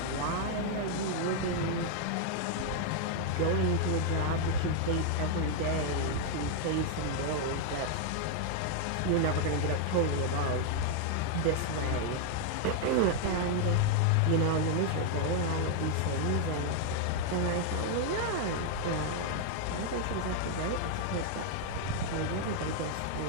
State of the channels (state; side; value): different; both; correlation 0.00